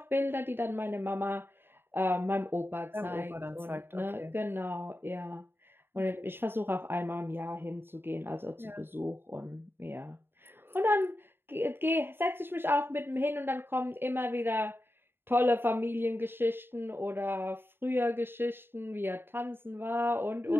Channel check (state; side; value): late; left; 0.11 ms